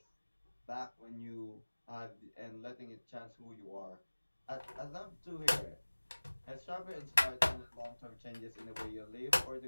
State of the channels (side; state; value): both; inverted; correlation -1.00